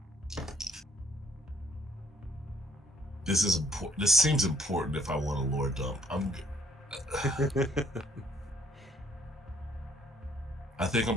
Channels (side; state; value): both; normal; correlation 0.66